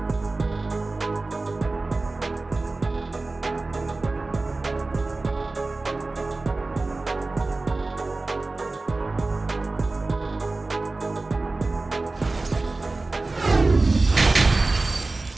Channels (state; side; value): quieter; left; 3.3 dB